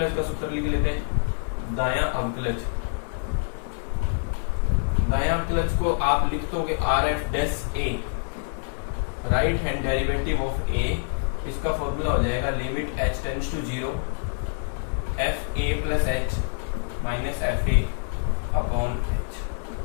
का सूत्र लिख लेते हैं। दायां अवकलज, दायां अवकलज को आप लिख दोगे RF' a, right hand derivative of a। इसका फॉर्मूला हो जाएगा limit h tends to 0 fa plus h minus fa upon h।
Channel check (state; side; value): silent; right; digital silence